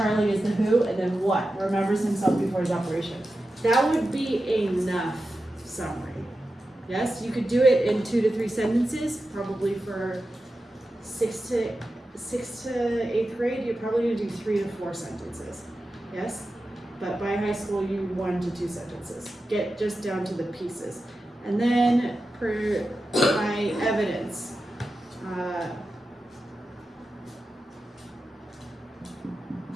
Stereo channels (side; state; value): both; normal; correlation 0.92